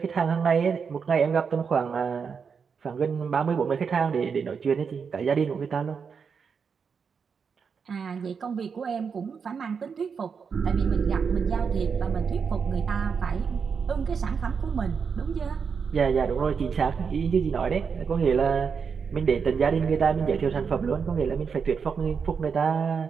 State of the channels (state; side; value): quieter; left; 6.1 dB